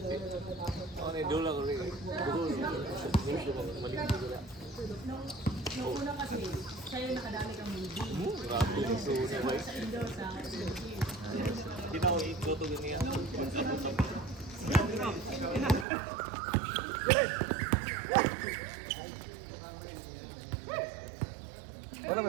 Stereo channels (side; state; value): left; drops out; at 15.9 s